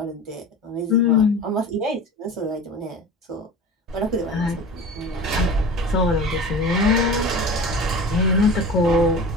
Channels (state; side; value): normal; both; correlation 0.36